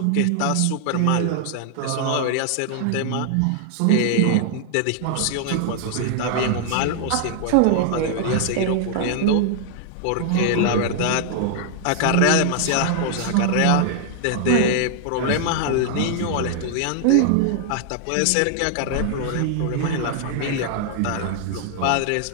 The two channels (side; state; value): both; different; correlation 0.00